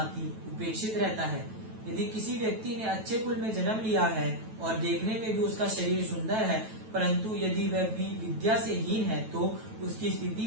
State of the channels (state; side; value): late; left; 9.1 ms